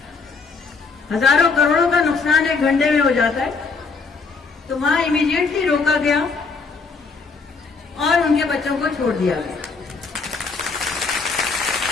ہزاروں کروڑوں کا نقصان 1 گھنٹے میں ہو جاتا ہے. تو وہاں امیڈیٹلی روکا گیا اور ان کے بچوں کو چھوڑ دیا گیا.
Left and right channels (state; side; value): quieter; right; 4.6 dB